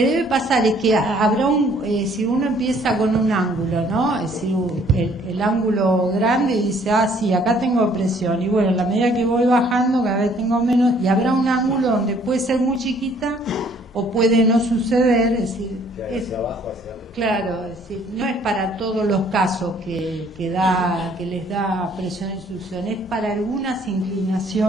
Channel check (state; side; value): normal; both; correlation 0.60